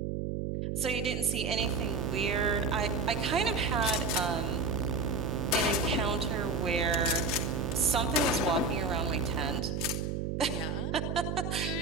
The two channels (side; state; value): right; noise; hum, 2 dB below the sound